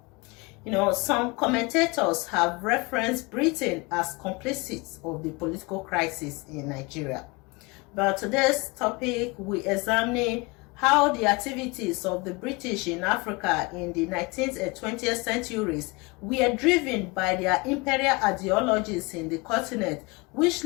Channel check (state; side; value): quieter; right; 26.5 dB